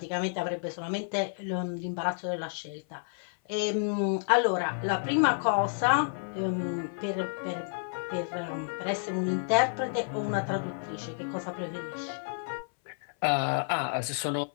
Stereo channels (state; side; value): silent; right; 58 dB below the other